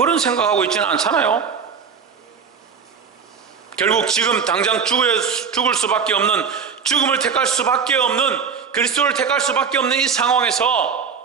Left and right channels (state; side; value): quieter; left; 6.3 dB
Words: 생각하고 있지는 않잖아요. 결국 지금 당장 죽을 수밖에 없는, 죽음을 택할 수밖에 없는, 그리스도를 택할 수밖에 없는 이 상황에서